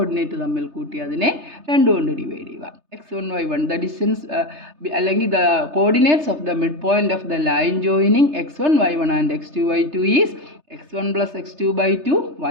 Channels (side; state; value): left; late; 3.3 ms